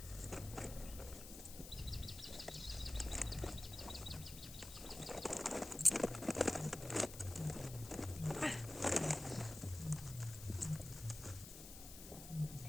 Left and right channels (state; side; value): noise; left; hiss, 12 dB below the sound